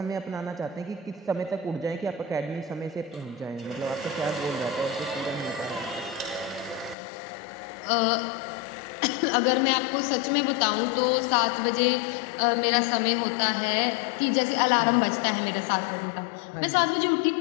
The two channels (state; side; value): drops out; right; at 7.0 s